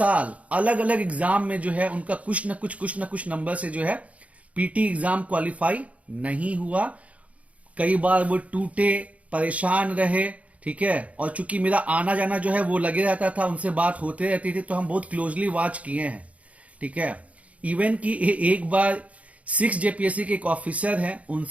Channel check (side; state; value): left; late; 0.066 ms